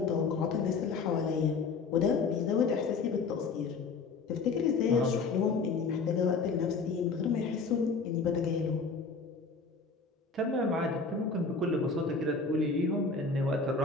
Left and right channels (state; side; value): quieter; right; 4.5 dB